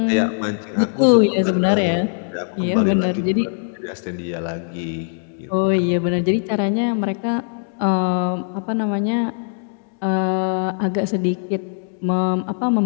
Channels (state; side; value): silent; right; digital silence